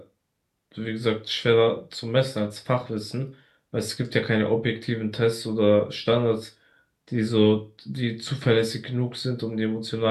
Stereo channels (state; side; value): identical; both; correlation 1.00